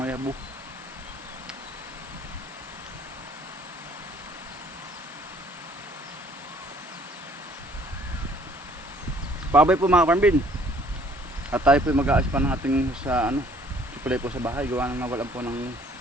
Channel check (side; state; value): both; normal; correlation 0.59